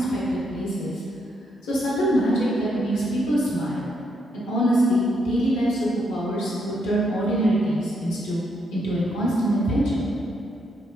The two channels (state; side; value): normal; both; correlation 0.76